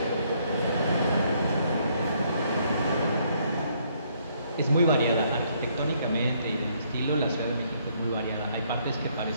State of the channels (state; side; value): inverted; both; correlation -0.69